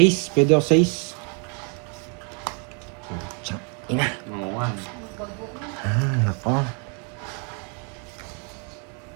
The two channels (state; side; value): quieter; left; 37.1 dB